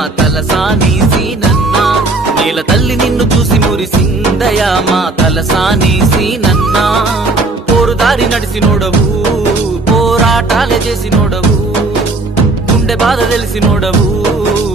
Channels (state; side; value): quieter; left; 3.1 dB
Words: తలసాని సీనన్నా నేల తల్లి నిన్ను చూసి మురిసిందయా మా తలసాని సీనన్నా పోరుదారి నడిసినోడవు పోరాటాలే చేసినోడవు గుండె బాధ తెలిసినోడవు